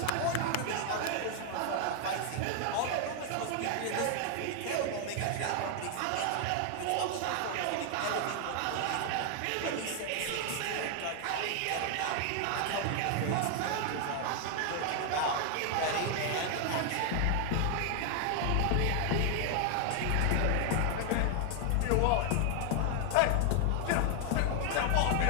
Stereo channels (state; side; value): different; both; correlation 0.00